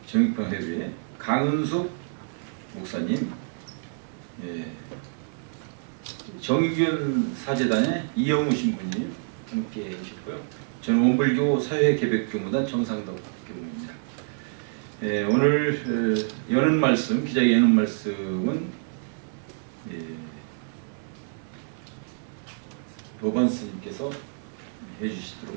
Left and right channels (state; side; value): silent; left; digital silence